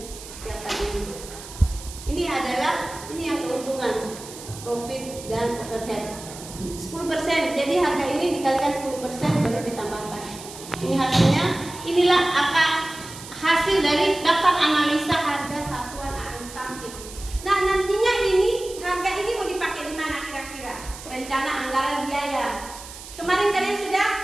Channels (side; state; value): right; noise; hiss, 14 dB below the sound